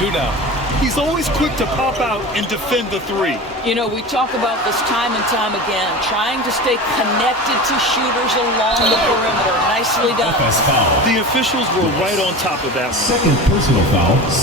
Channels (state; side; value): normal; both; correlation 0.31